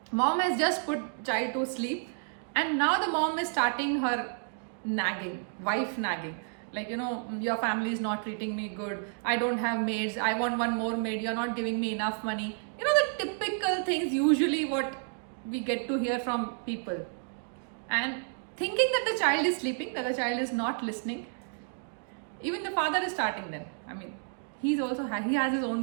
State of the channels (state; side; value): silent; left; 57 dB below the other